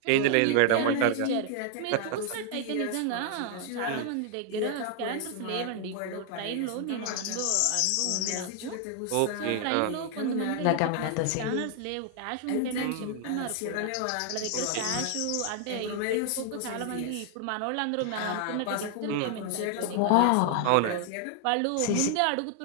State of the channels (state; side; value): different; both; correlation 0.00